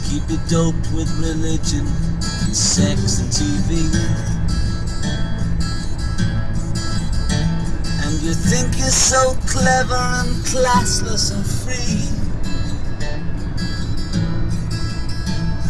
Keep it doped with religion and sex and TV. And you think you're so clever and classless and free,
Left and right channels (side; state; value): both; identical; correlation 1.00